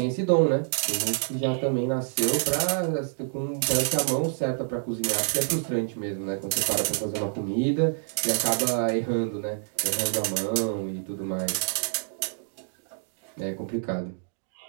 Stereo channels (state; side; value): silent; left; digital silence